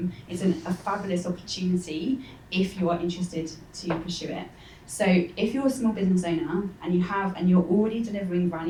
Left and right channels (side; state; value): both; identical; correlation 1.00